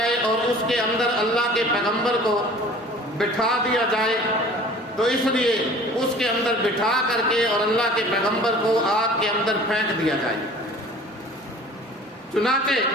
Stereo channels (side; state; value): both; normal; correlation 0.46